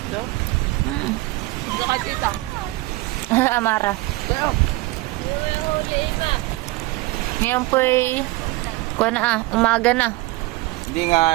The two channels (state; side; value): quieter; left; 20.3 dB